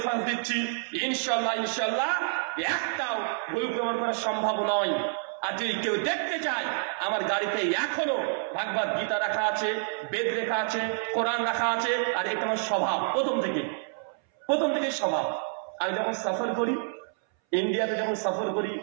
দিচ্ছি ইনশাল্লাহ ইনশাল্লাহ একটাও ভুল প্রমাণ করা সম্ভব নয়। আর যদি কেউ দেখতে চায়, আমার গাড়িতে এখনো ভাগবত গীতা রাখা আছে, বেদ লেখা আছে, কোরআন রাখা আছে। আর এটা আমার স্বভাব, প্রথম থেকে স্বভাব। আমি যখন সফর করি, ইন্ডিয়াতে যখন সফর করি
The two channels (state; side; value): silent; left; 59 dB below the other